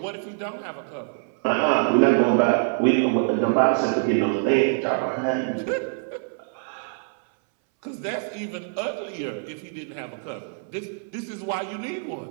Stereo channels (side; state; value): left; silent; 62 dB below the other